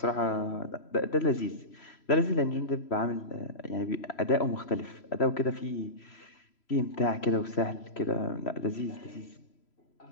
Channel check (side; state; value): right; late; 3.0 ms